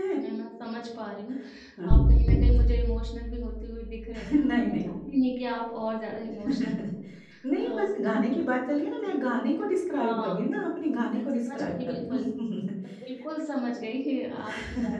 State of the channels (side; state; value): both; identical; correlation 1.00